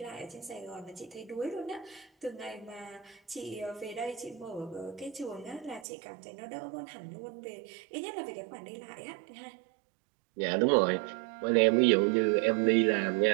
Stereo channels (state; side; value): drops out; left; at 5.9 s